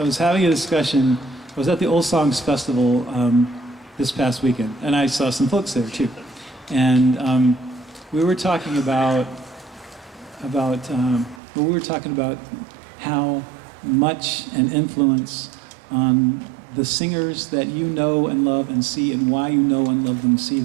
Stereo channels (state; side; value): drops out; left; at 11.4 s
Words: having a discussion. I was at the Old Songs Festival this past weekend, and I saw some folks there too. And we were talking about how much an influence on the singers that you know and love and see, and why you know and love them and see